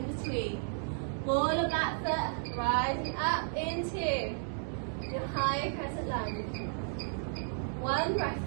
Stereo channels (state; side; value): silent; left; digital silence